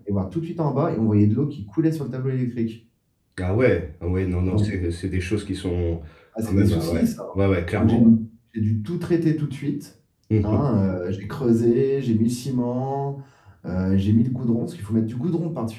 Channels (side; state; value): both; identical; correlation 1.00